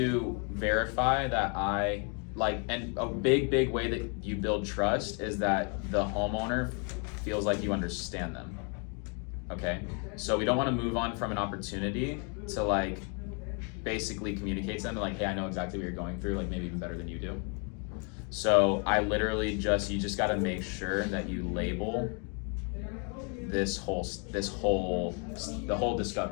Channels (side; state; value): right; quieter; 37.2 dB